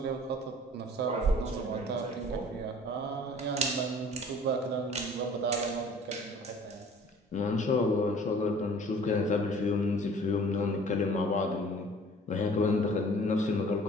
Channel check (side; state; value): both; normal; correlation 0.50